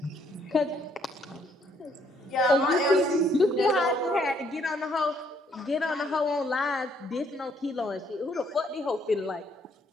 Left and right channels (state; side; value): normal; both; correlation 0.68